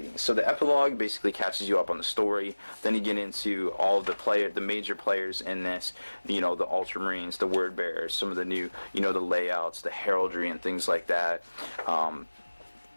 So the epilogue basically catches you up on the story. Then you get into all of the major players in this, the Ultramarines, the Word Bearers, some of the new, the layouts, the heraldry and things like that. All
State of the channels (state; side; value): inverted; both; correlation -1.00